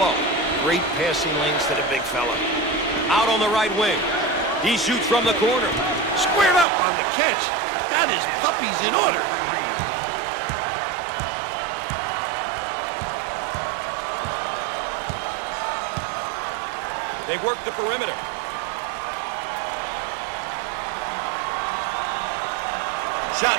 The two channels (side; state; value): left; drops out; at 6.7 s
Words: Great passing lanes to the big fella. Out on the right wing. He shoots from the corner. Squared up on the catch. Got his puppies in order. They work the perimeter.